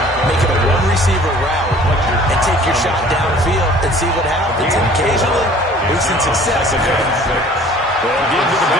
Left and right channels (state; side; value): normal; both; correlation 0.51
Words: make it a one-receiver route, and take your shot downfield and see what happens. And occasionally, we've seen success. Well, give to the